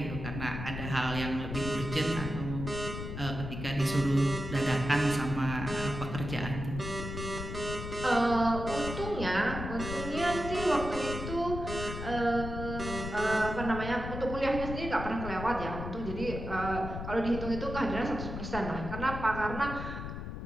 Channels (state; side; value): noise; left; rumble, 6 dB below the sound